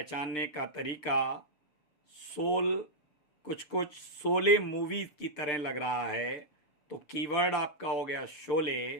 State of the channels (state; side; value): late; right; 6.7 ms